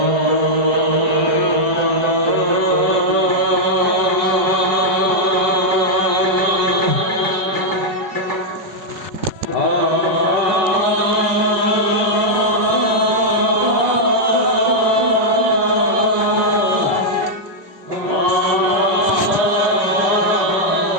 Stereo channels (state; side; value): late; left; 4.7 ms